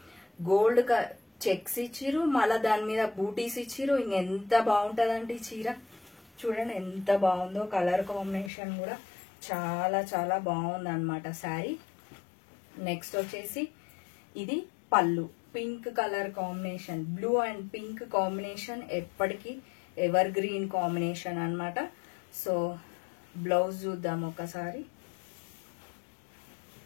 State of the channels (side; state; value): right; drops out; at 8.5 s